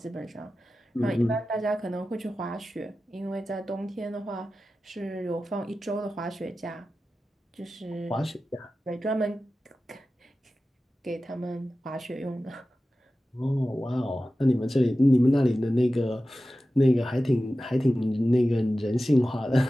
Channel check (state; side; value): normal; both; correlation 0.94